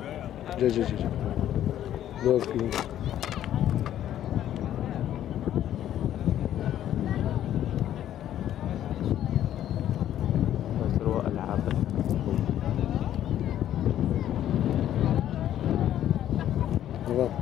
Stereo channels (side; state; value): right; quieter; 11.5 dB